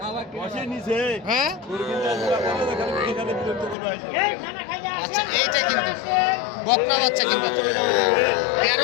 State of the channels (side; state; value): right; drops out; at 3.8 s